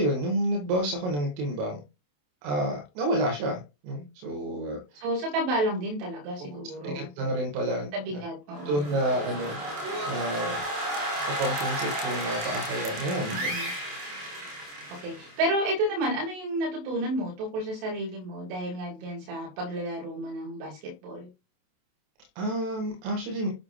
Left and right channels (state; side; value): late; left; 27 ms